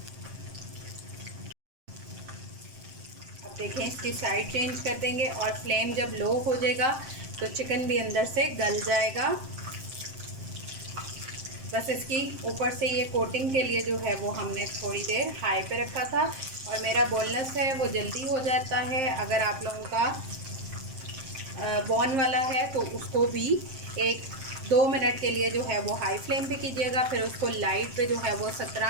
देखें, इसकी साइड चेंज कर देंगे और फ्लेम जब लो हो जाएगा तो चिकन भी अंदर से गल जाएगा। बस इसकी ऊपर से ये कोटिंग के लिए जो है वो हमने थोड़ी देर हाई पे रखा था। और मेरा बोनलेस है वो जल्दी हो जाता है। अगर आप लोगों का बॉन वाला है तो उसको भी 1-2 मिनट के लिए जो है वो हाई फ्लेम पे कीजिएगा। फिर उसको लाइट पे जो है वो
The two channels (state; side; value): late; left; 7.6 ms